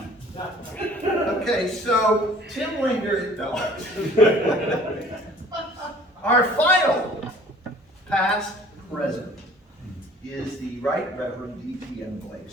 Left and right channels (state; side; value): normal; both; correlation 0.52